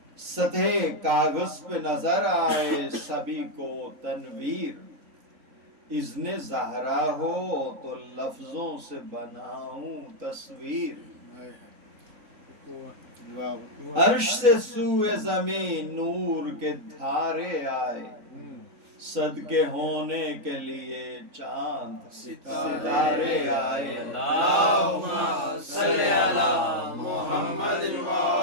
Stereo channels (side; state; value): left; late; 3.9 ms